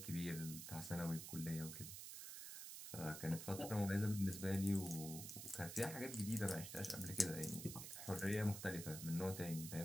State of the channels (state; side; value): noise; right; hiss, 8 dB below the sound